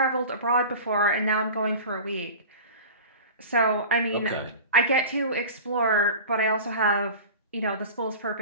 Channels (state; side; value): inverted; both; correlation -0.35